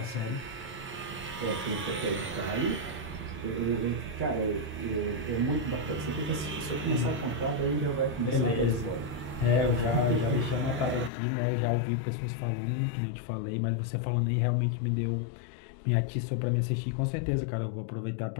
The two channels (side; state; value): right; drops out; at 11.1 s